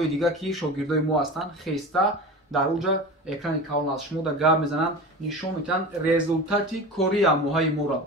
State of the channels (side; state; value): both; normal; correlation 0.31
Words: дигар ки шогирдои мо ҳастанд, хеста дар оҷа экрани калон аст. Шумо дар гап мезананд, нишон медиҳанд результати кори амоҳаи моро.